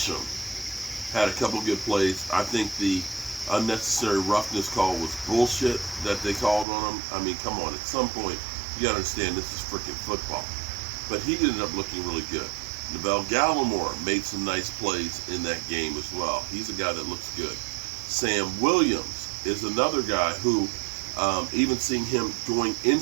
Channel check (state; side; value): drops out; left; at 6.7 s